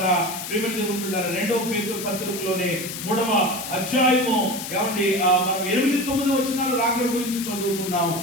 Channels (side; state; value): left; noise; hiss, 8 dB below the sound